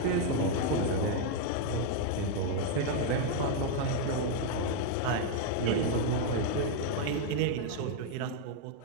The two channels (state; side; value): different; both; correlation 0.00